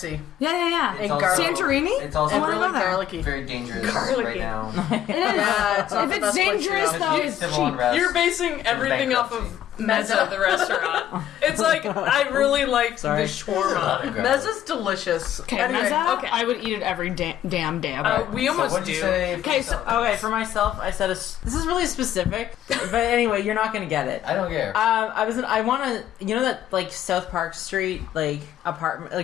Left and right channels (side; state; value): right; quieter; 11.3 dB